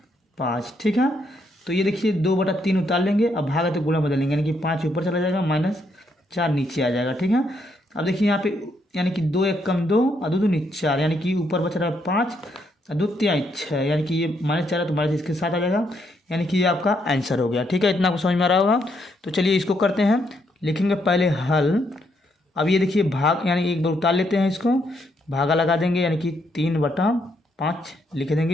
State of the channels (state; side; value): normal; both; correlation 0.75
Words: ठीक है, तो ये देखिए 2/3 उतार लेंगे, अब भागा तो गुणा बदलेंगे, यानी कि 5 ऊपर चला जाएगा, -4 नीचे आ जाएगा। ठीक है, अब देखिए यहाँ पे यानी कि 2 × 1 = 2 और 2 × 2 = 4, यानी कि ऊपर बच रहा है 5 और 2 × 3 = 6, यानी कि ये -4 है तो माइनस इसके साथ आ जाएगा, यानी कि ये आपका आंसर हो गया। ठीक है, इतना आपको समझ में आ रहा होगा। तो चलिए इसको करते हैं। लिखेंगे पहले हल, अब ये देखिए भाग, यानी एक बार उतार लेते हैं इसको, भागा लगा देंगे, यानी कि 3/5 लिख